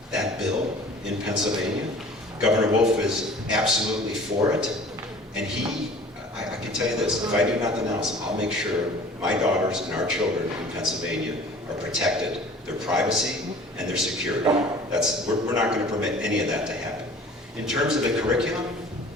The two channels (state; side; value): normal; both; correlation 0.47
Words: that bill in Pennsylvania. Governor Wolf is absolutely for it. And I can tell you this, if I do nothing else, I'll make sure my daughters and our children in Pennsylvania are protected, their privacy and their security. We're not going to permit any of that to happen. In terms of the curriculum,